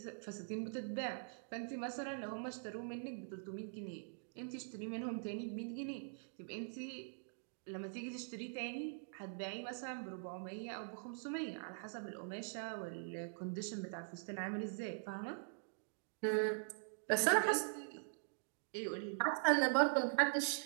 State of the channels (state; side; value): silent; left; digital silence